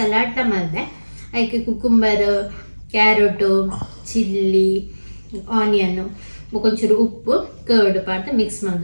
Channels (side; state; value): both; inverted; correlation -1.00